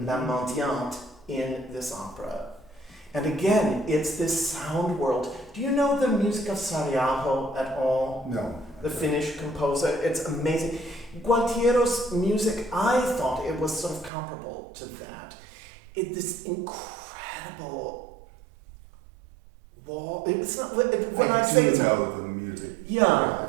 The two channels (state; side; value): drops out; left; at 14.1 s